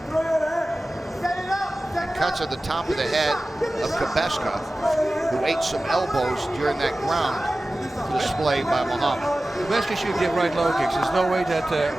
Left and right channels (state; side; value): normal; both; correlation 0.96